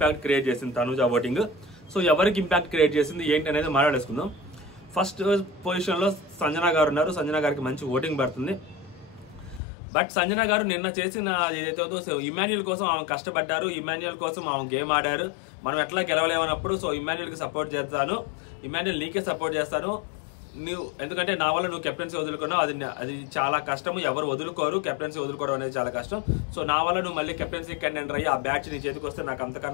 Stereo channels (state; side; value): drops out; right; at 9.6 s